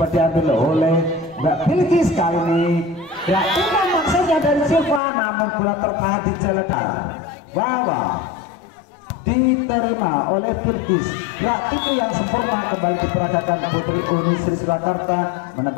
diambil oleh Mbak Bilkis. Kali ini ya ini maksudnya dari Silva, namun bola tertahan di jalan Wawa. Diterima oleh Bilkis. Gerak itu yang sempurna kembali diperagakan Putri Uni Sri Surakarta,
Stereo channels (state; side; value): drops out; right; at 5.0 s